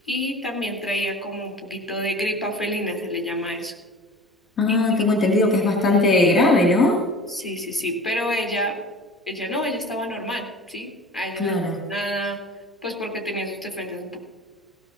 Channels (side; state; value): both; normal; correlation 0.40